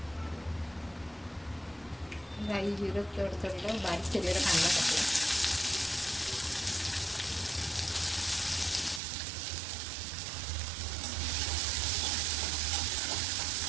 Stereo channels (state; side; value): drops out; left; at 9.0 s